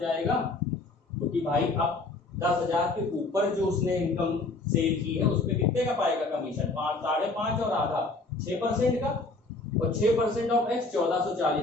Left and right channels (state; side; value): quieter; right; 3.3 dB